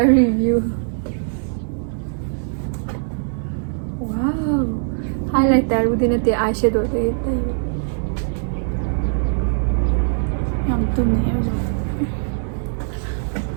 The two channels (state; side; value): silent; left; digital silence